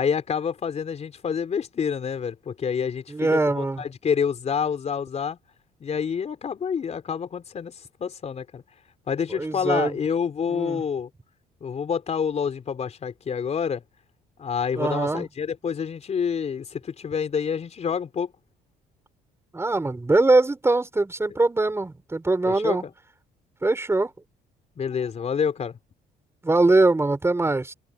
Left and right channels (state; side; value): normal; both; correlation 0.72